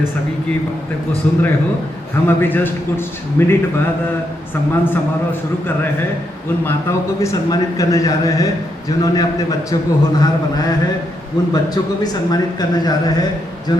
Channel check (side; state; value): both; normal; correlation 0.80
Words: सभी की बातें को सुन रहे हो। हम अभी जस्ट कुछ मिनट बाद सम्मान समारोह शुरू कर रहे हैं। उन माताओं को भी सम्मानित करने जा रहे हैं जिन्होंने अपने बच्चों को होनहार बनाया है। उन बच्चों को भी सम्मानित करने जा रहे हैं